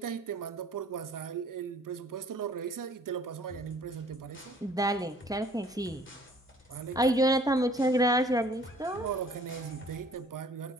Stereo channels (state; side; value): normal; both; correlation 0.55